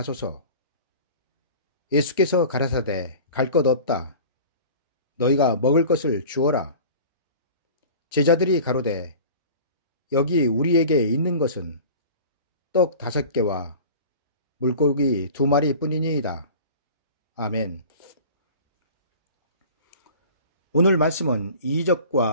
예수께서 가라사대 갈 것 없다. 너희가 먹을 것을 주어라. 제자들이 가로되 여기 우리에게 있는 것은 떡 5개와 물고기 2마리 뿐이니이다. 아멘. 오늘 말씀은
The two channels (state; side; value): inverted; both; correlation -0.41